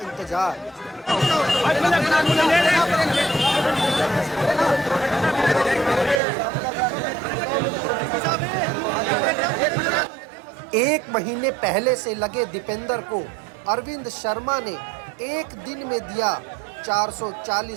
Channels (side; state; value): left; drops out; at 6.2 s